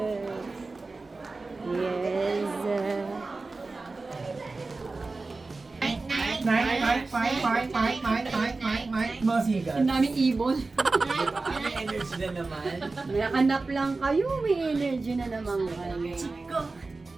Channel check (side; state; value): left; quieter; 3.6 dB